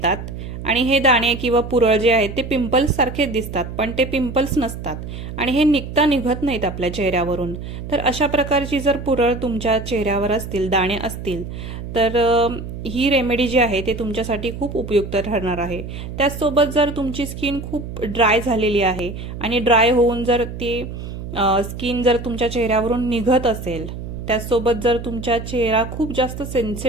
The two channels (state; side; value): noise; right; hum, 9 dB below the sound